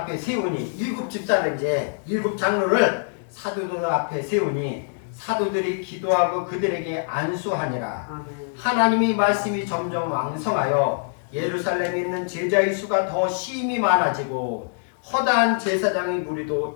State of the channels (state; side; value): silent; right; digital silence